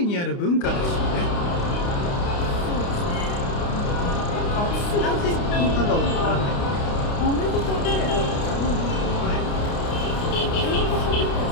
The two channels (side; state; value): right; late; 29 ms